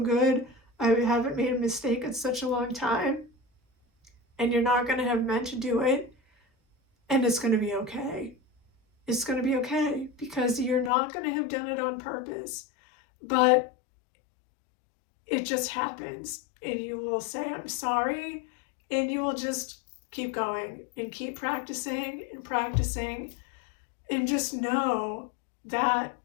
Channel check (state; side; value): drops out; right; at 10.9 s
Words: I haven't made a mistake in such a long time. And you're not going to have meant to do it. And it's going to be okay. It's going to be okay because you're not going to have done it on purpose. But it just happens, and you will say, I'm sorry, and you will just keep going and keep practicing and practicing, and just know that